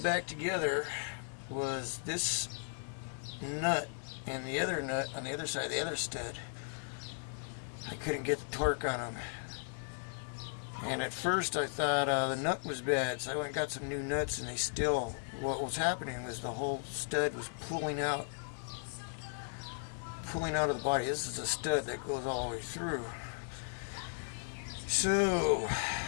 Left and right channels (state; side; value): silent; right; 54 dB below the other